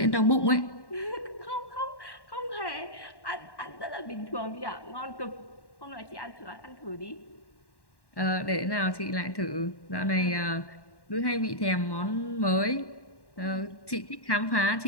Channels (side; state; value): right; late; 1.1 ms